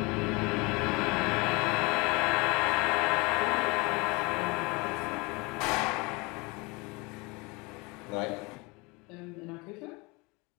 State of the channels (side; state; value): right; quieter; 26.5 dB